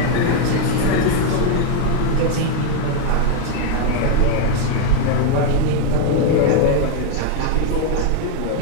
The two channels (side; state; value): both; different; correlation 0.00